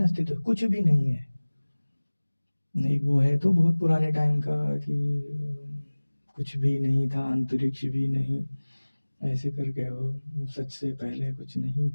कुछ भी नहीं है, नहीं वो है तो बहुत पुराने टाइम का कि कुछ भी नहीं था, अंतरिक्ष भी नहीं, ऐसे करके वो सच से पहले कुछ नहीं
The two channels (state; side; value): inverted; both; correlation -1.00